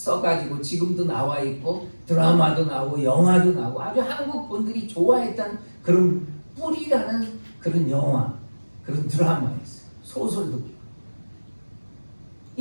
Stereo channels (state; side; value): inverted; both; correlation -1.00